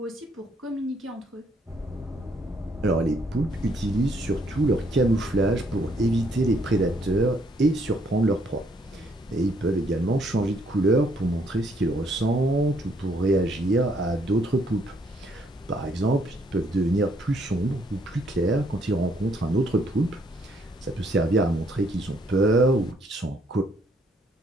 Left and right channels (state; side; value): normal; both; correlation 0.69